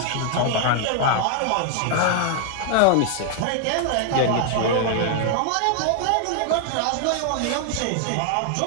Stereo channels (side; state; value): both; different; correlation 0.00